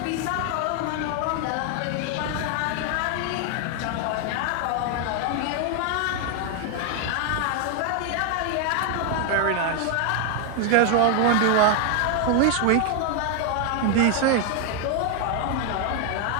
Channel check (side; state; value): both; different; correlation 0.00